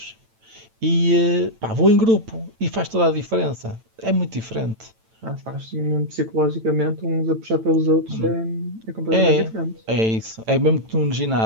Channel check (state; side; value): late; left; 9.0 ms